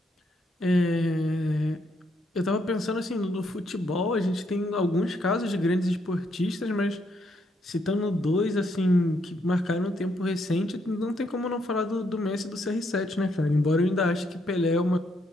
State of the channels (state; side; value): normal; both; correlation 0.75